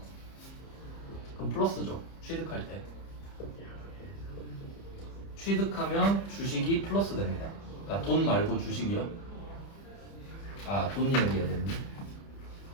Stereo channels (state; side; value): late; right; 30 ms